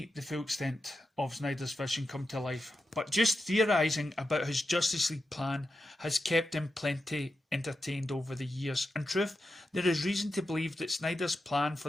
the full extent of Snyder's vision come to life, but just theorising about his Justice League plan has kept him plenty entertained over the years. In truth, there is reason to believe that Snyder's plan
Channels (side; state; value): both; normal; correlation 0.89